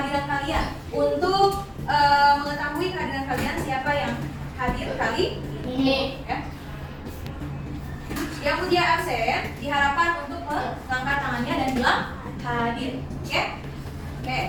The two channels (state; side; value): identical; both; correlation 1.00